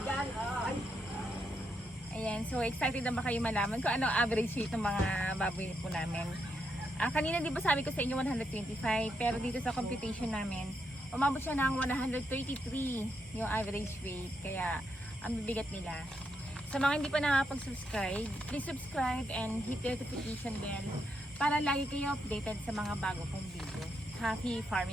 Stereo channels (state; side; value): normal; both; correlation 0.80